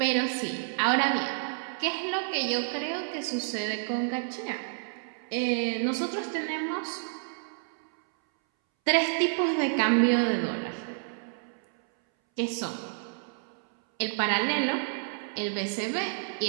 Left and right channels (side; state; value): left; silent; 58 dB below the other